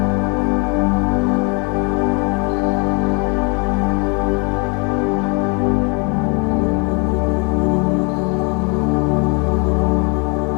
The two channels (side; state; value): right; quieter; 33.1 dB